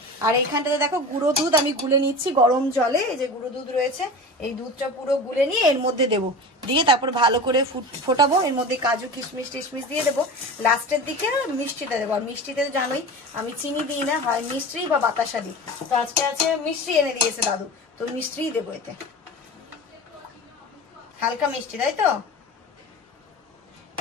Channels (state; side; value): normal; both; correlation 0.32